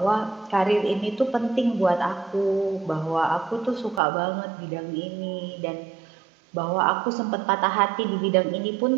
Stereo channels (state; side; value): drops out; left; at 4.0 s